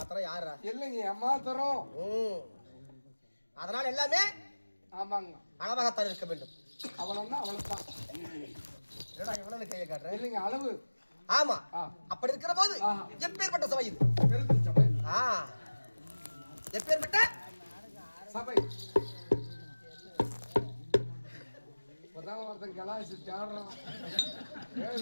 யாரா? இல்லைங்க, ஏமாத்திரம். அதனால எல்லாமே ஆமாங்க அளவாகத்தான் இருக்க வேண்டும். அவளன்னா அவளைத்தான். என்னடா இவ்வளவு கையை காட்டுறேன்? இல்லைங்க, அளவு. ஆமா, அப்படி இருக்கிற போது எப்பேற்பட்ட சபை இது? சபை. எப்பேற்பட்ட சபை? ஒருத்தன் கலாசி தேடுறான்.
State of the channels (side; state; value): both; inverted; correlation -1.00